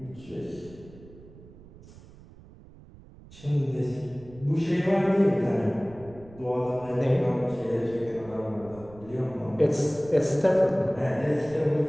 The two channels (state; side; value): noise; right; rumble, 21 dB below the sound